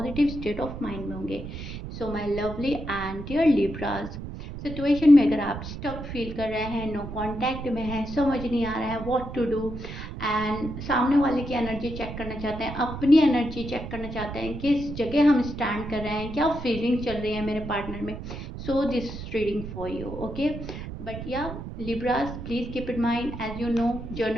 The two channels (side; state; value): right; noise; rumble, 9 dB below the sound